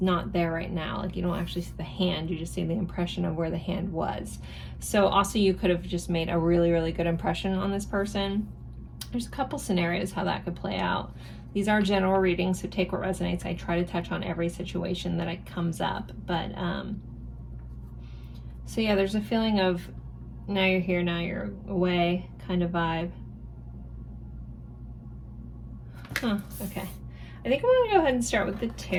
there right now. Like you don't actually see the hand, you just see the impression of where the hand was. So also you could have just made a really, really good impression on this person. There's a couple scenarios how that could play out. These are general readings, so take what resonates. I try to touch on every situation that it comes up, but so yeah, there's a feeling of now you're here, now you're away kind of vibe. Okay. I think I'm going to go ahead and start with the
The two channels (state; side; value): identical; both; correlation 1.00